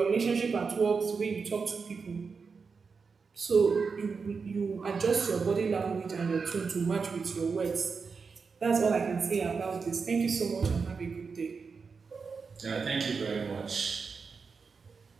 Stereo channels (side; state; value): left; quieter; 5.2 dB